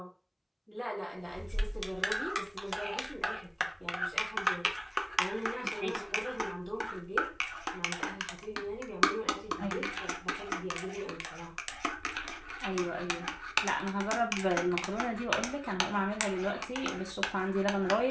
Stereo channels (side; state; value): both; identical; correlation 1.00